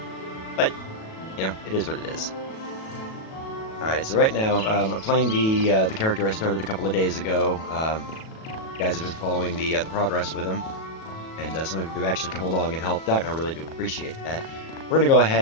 but, you know, it is what it is. Alright, so right now, I'm playing the character I started a couple of days ago. You guys have been following the progress with him, and some of you have actually come along and helped out, and I really do appreciate that. We're going to go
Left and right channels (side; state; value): right; late; 37 ms